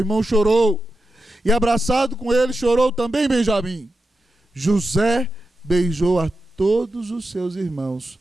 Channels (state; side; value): normal; both; correlation 0.89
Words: chorou, e abraçado com ele chorou também Benjamim. José beijou a todos os seus irmãos,